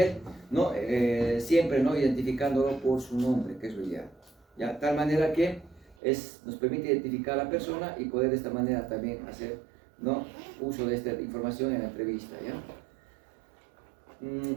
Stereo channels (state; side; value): drops out; left; at 6.0 s